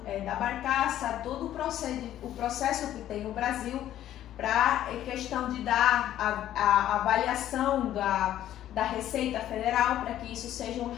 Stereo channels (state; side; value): quieter; right; 12.2 dB